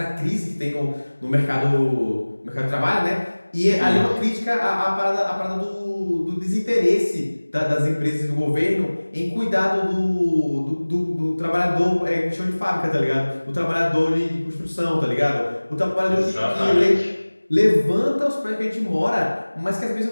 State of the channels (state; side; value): inverted; both; correlation -1.00